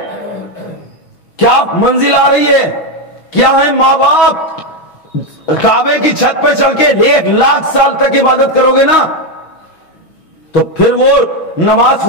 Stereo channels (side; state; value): right; late; 6.1 ms